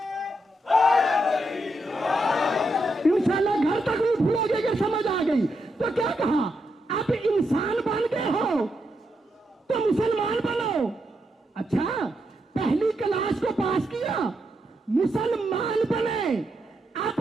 इंशाल्लाह घर तक नहीं भूलोगे कि समझ आ गई। तो क्या कहा, अब इंसान बन गए हो तो मुसलमान बनो। अच्छा, पहली क्लास को पास किया, मुसलमान बने।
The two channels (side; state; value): both; normal; correlation 0.82